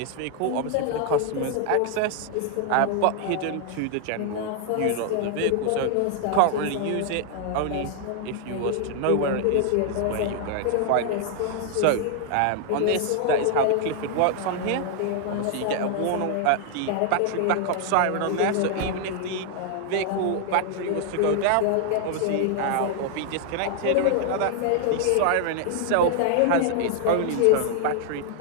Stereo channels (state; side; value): different; both; correlation 0.00